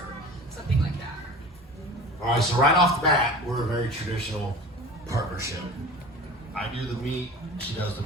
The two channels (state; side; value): normal; both; correlation 0.38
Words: something like that. All right, so right off the bat, we're a very traditional partnership. I do the meat, she does the